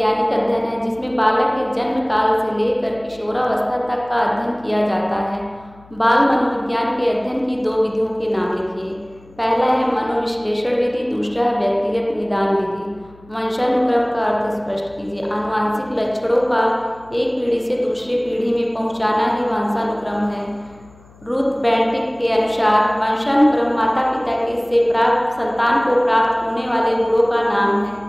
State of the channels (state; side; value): noise; left; hum, 25 dB below the sound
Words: अध्ययन है जिसमें बालक के जन्म काल से लेकर किशोरावस्था तक का अध्ययन किया जाता है। बाल मनोविज्ञान के अध्ययन की 2 विधियों के नाम लिखिए। पहला है मनोविश्लेषण विधि, दूसरा है व्यक्तिगत निदान विधि। वंशानुक्रम का अर्थ स्पष्ट कीजिए। आनुवांशिक लक्षणों का एक पीढ़ी से दूसरी पीढ़ी में पहुंचाना ही वंशानुक्रम है। रूथ बेंटिक के अनुसार वंशानुक्रम माता पिता के से प्राप्त संतान को प्राप्त होने वाले गुणों का नाम है।